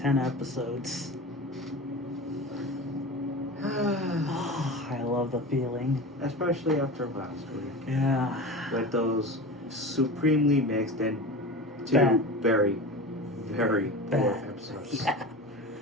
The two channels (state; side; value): normal; both; correlation 0.30